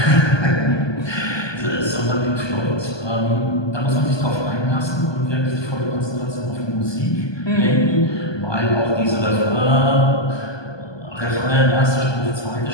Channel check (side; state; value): right; late; 1.2 ms